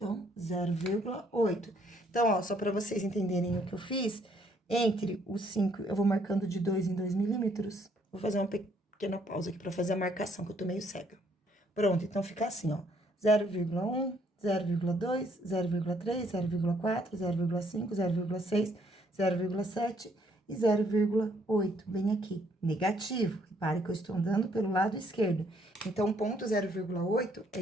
0,8. Então, ó, só para vocês entenderem o que eu fiz, entre os 5, eu vou marcando de 2 em 2 milímetros. Vou fazer uma pequena pausa aqui para fazer a marcação, que eu tô meio cega. Pronto, então fica assim, ó, 0,1, 0,2, 0,3, 0,4, 0,5, 0,6, 0,7 e 0,8, bem aqui, negativo. Repare que eu estou andando pelo lado esquerdo. Então, o ponto 0,8 é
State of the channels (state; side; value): normal; both; correlation 0.67